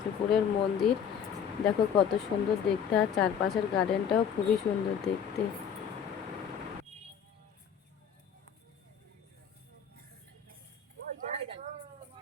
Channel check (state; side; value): quieter; right; 7.6 dB